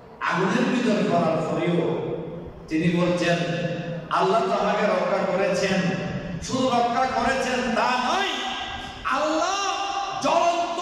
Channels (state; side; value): identical; both; correlation 1.00